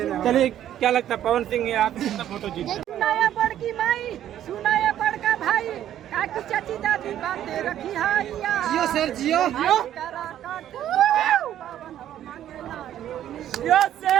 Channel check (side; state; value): left; quieter; 11.4 dB